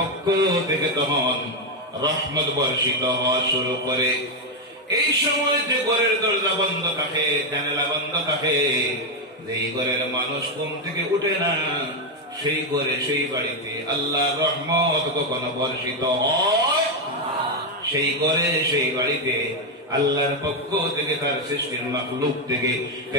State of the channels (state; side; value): normal; both; correlation 0.04